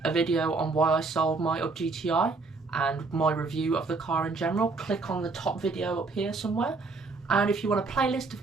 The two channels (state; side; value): quieter; left; 3.9 dB